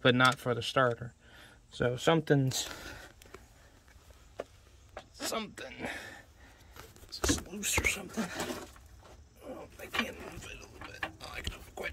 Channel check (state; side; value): identical; both; correlation 1.00